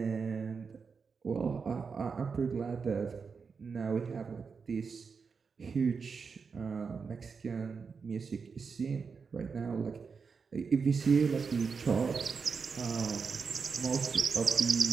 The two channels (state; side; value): quieter; left; 5.4 dB